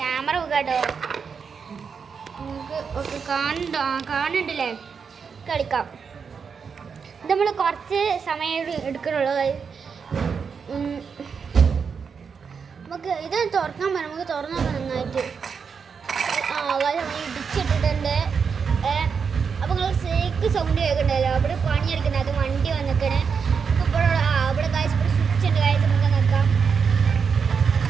കേട്ടോ, നമുക്ക് ഒക്കെ കാണുന്നുണ്ടല്ലേ, കളിക്കാം. ഇത് നമ്മൾ കുറച്ച് സമയം എടുക്കണുള്ളൂ. നമുക്ക് ഇത് തുറക്കാൻ പറ്റും, നമുക്ക് തുറന്നു നോക്കാം നന്നായിട്ട്. ഇടിച്ചിട്ടിട്ടുണ്ട്. അപ്പോൾ നിങ്ങൾ സേക്ക് സൗണ്ട് കേൾക്കണ്ടല്ലോ, അവിടെ പണിയെടുക്കുന്നത്. അത് വണ്ടി വന്നിക്കണേ. ഇപ്പോൾ ഇവിടെ കാഴ്ച സ്വിച്ച് ഉണ്ട്. കാഴ്ച നമുക്ക് നോക്കാം.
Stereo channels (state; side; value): quieter; left; 6.0 dB